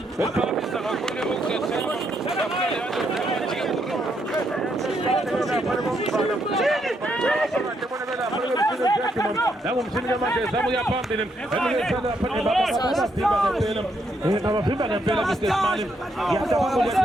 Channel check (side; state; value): both; normal; correlation 0.76